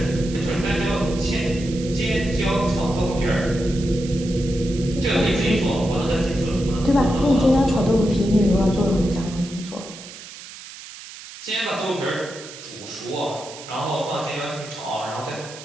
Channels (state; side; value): noise; right; hiss, 15 dB below the sound